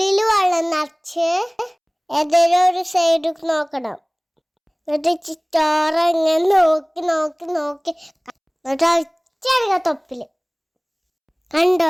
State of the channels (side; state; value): both; identical; correlation 1.00